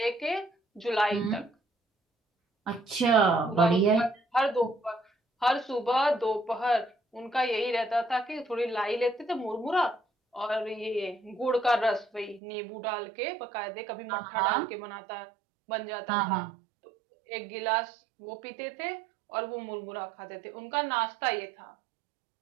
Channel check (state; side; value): drops out; left; at 12.4 s